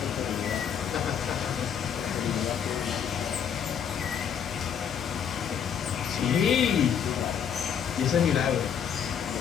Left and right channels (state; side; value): quieter; right; 8.1 dB